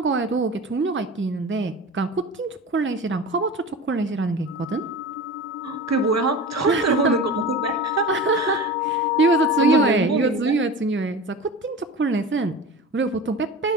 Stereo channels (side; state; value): both; normal; correlation 0.32